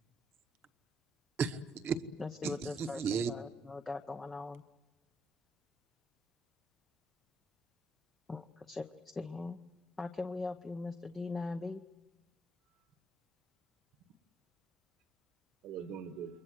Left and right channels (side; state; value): both; normal; correlation 0.76